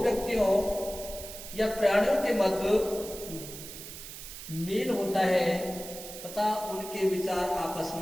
या प्राणियों के मध्य मेल होता है तथा उनके विचार आपस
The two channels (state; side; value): noise; right; hiss, 12 dB below the sound